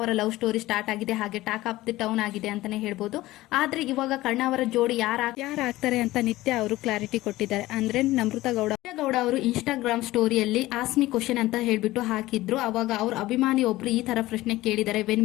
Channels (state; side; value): quieter; right; 17.4 dB